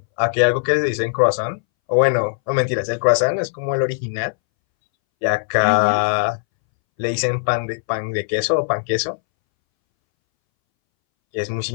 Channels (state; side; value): silent; right; 64 dB below the other